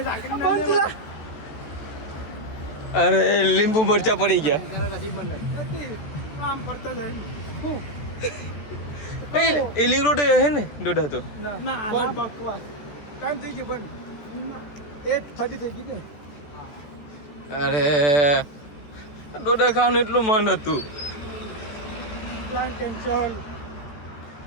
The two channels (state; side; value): late; right; 14 ms